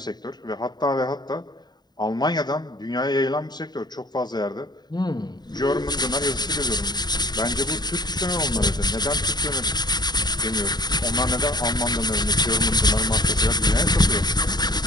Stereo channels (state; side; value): late; right; 0.20 ms